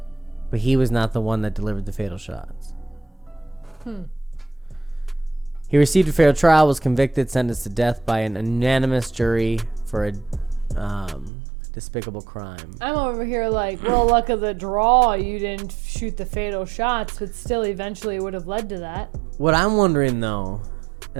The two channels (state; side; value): drops out; left; at 11.3 s